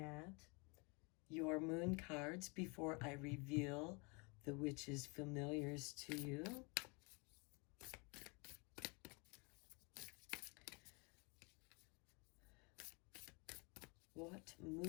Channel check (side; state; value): right; quieter; 30.8 dB